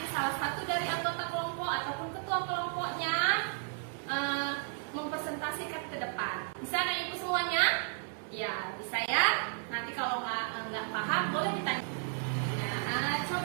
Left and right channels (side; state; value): left; silent; 55 dB below the other